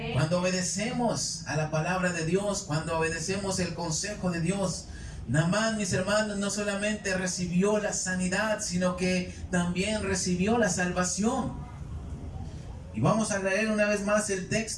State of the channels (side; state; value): both; identical; correlation 1.00